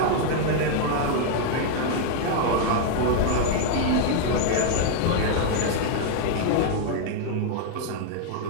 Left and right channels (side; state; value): both; different; correlation 0.00